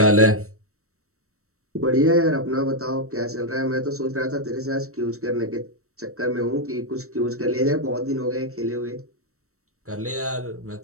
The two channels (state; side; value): late; left; 0.64 ms